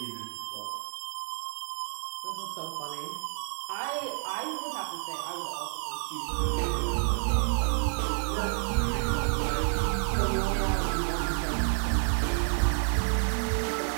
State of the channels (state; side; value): silent; left; 58 dB below the other